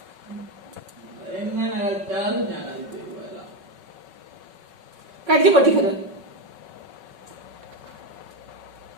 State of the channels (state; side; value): late; left; 5.3 ms